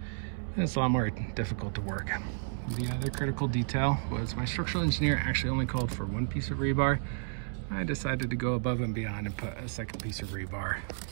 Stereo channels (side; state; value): left; silent; 57 dB below the other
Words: it's a lot more difficult to work. The other critical detail was my structural engineer actually only called for 1 piece of rebar. I decided to go above and beyond and put a second piece of rebar